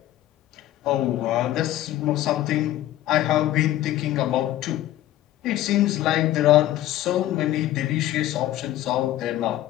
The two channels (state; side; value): quieter; right; 14.1 dB